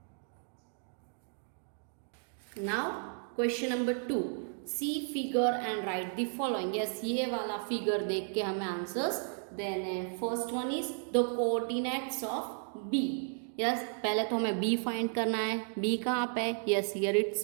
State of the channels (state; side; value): silent; left; 55 dB below the other